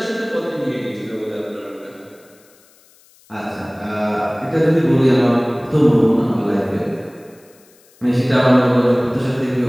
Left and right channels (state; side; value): noise; left; hiss, 30 dB below the sound